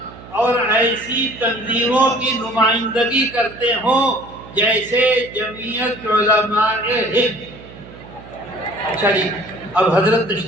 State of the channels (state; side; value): noise; right; hum, 18 dB below the sound